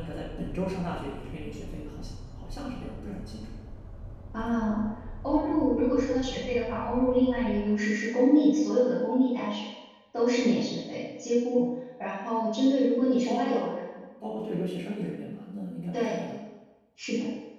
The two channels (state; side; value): identical; both; correlation 1.00